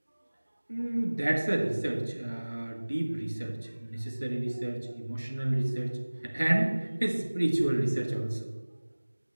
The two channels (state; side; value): inverted; both; correlation -1.00